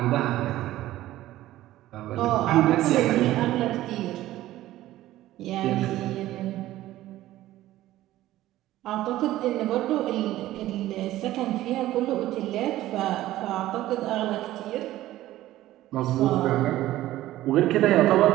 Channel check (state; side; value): quieter; left; 15.0 dB